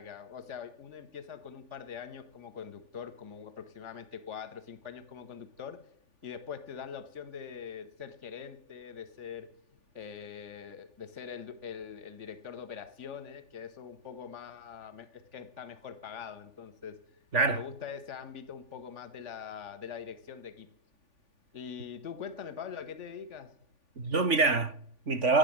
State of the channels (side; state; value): left; late; 3.5 ms